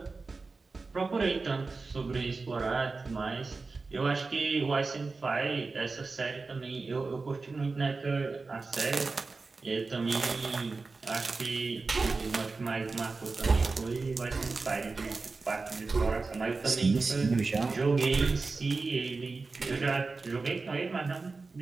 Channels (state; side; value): quieter; left; 4.0 dB